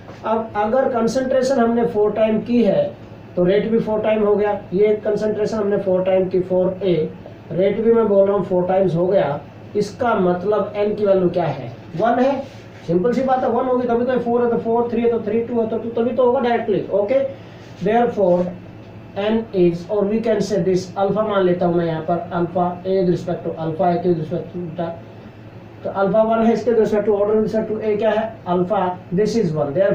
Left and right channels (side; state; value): both; identical; correlation 1.00